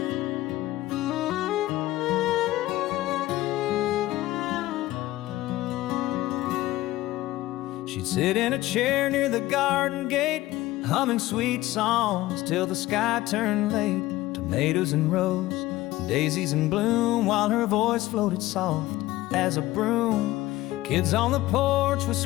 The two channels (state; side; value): quieter; right; 17.0 dB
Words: She'd sit in a chair near the garden gate, humming sweet songs till the sky turned late. Tomatoes in rows, daisies in bloom, while her voice floated soft as a broom. Kids on the porch with